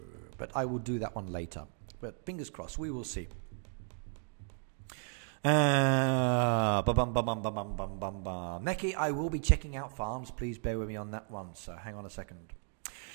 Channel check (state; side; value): silent; left; 55 dB below the other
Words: but I will do that one later. But fingers crossed, we will see. Neki, I will be checking out farms. Please bear with me on that one. So hang on a second.